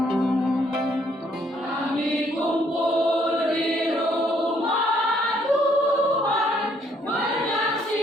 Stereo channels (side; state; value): both; normal; correlation 0.67